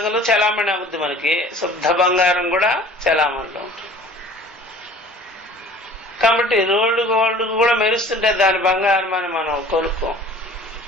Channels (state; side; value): normal; both; correlation 0.47